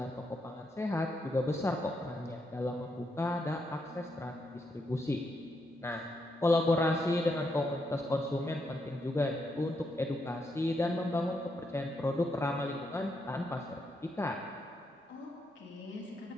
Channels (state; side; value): normal; both; correlation 0.80